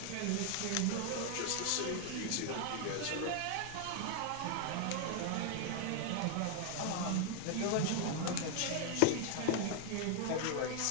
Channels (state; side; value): different; both; correlation 0.00